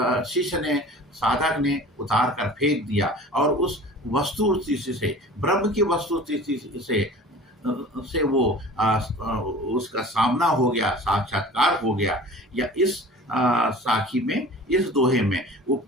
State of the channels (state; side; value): normal; both; correlation 0.42